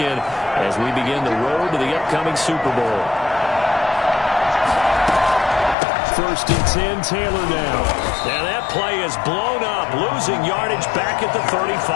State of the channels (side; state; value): right; drops out; at 5.8 s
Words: as we begin the road to the upcoming Super Bowl. 1st and 10, Taylor now. Now that play is blown up, losing yardage back at the